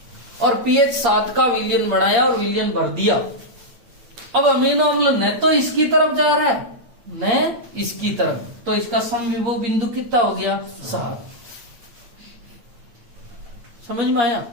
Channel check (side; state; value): left; late; 8.6 ms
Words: और pH 7 का विलयन बनाया और विलयन भर दिया। अब अमीनो अम्ल न तो इसकी तरफ जा रहा है न इसकी तरफ, तो इसका समविभव बिंदु कितना हो गया? 7। समझ में आया?